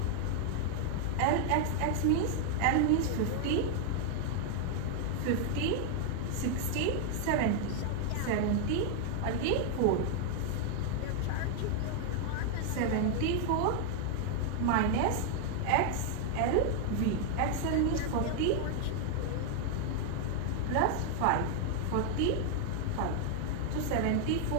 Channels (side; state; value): both; different; correlation 0.00